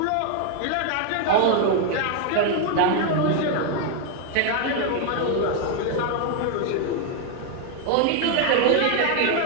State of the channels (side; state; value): both; different; correlation 0.00